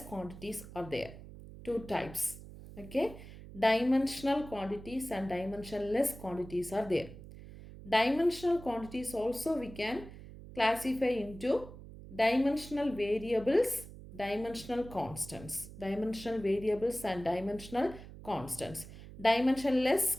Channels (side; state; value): right; noise; hum, 15 dB below the sound